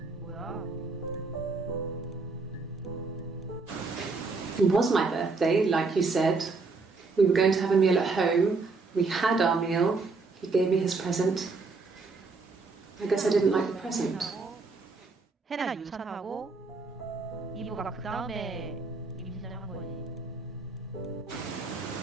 뭐야? It was my birthday, like you said. We were going to have a meal at home. We had our meal. He gave me his present. I guess I didn't like the present. 해나가 유산하고 이브가 그 다음에 임신을 한 거지.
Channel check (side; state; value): left; quieter; 4.0 dB